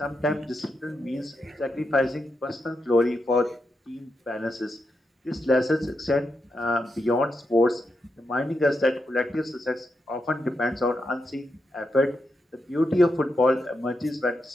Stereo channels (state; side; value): normal; both; correlation 0.85